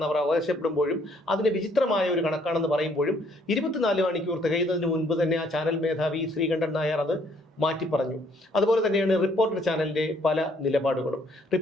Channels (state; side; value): normal; both; correlation 0.65